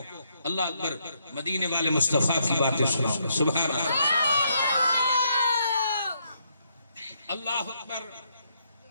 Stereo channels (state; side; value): inverted; both; correlation -0.75